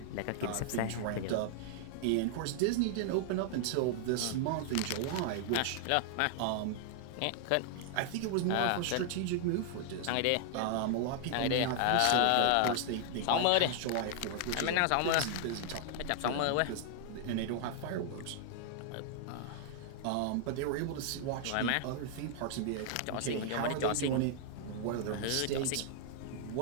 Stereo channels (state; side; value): different; both; correlation -0.01